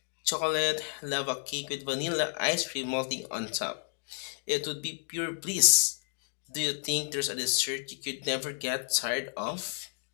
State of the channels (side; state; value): right; silent; 57 dB below the other